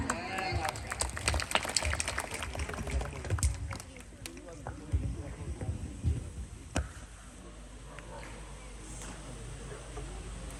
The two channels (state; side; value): identical; both; correlation 1.00